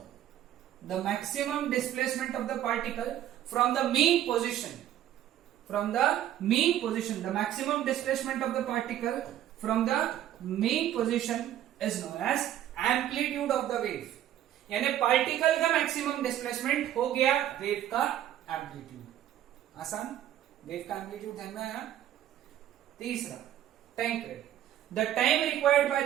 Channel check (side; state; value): left; quieter; 11.8 dB